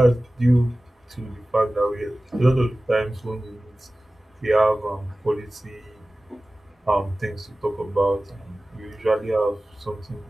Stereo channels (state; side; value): normal; both; correlation 0.97